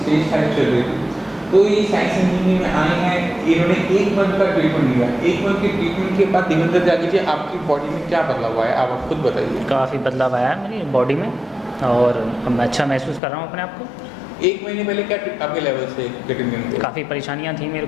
5 चल रही थी। तो ये साइंस इंजीनियरिंग में आए हैं, इन्होंने 1 मंथ का ट्रीटमेंट लिया। 1 मंथ के ट्रीटमेंट के बाद देवेंद्र त्यागी जी आपकी बॉडी में क्या बदलाव आया, आप खुद बताइए। काफ़ी बदलाव आया है मेरी बॉडी में और अब मैं अच्छा महसूस कर रहा हूँ अपने आप को। 1 महीने पहले क्या आपके लेवल से किडनी में काफ़ी परेशानियाँ थी मेरे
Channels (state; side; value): drops out; right; at 13.2 s